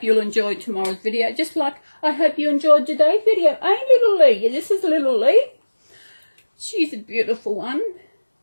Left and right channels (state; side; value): inverted; both; correlation -1.00